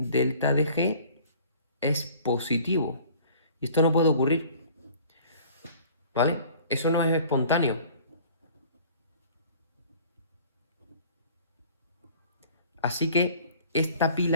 de G es positivo. Y esto no puede ocurrir, ¿vale? Eso no es espontáneo. Así que esta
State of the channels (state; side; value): inverted; both; correlation -0.50